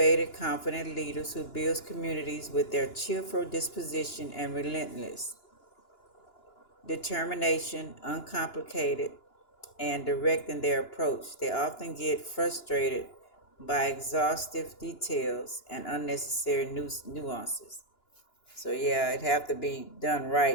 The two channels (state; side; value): late; right; 2.9 ms